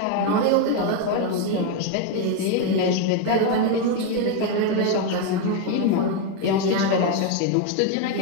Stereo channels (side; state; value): both; different; correlation 0.02